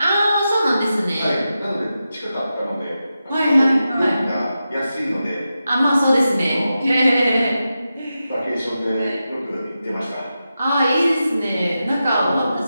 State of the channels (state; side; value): inverted; both; correlation -0.90